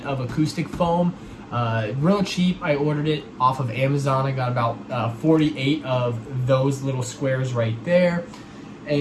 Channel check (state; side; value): identical; both; correlation 1.00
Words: of acoustic foam. Real cheap. I ordered it off of Amazon. I got about 48 of those little squares right there,